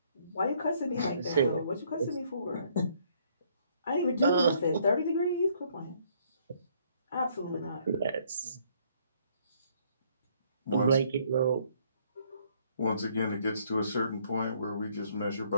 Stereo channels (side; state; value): both; inverted; correlation -0.66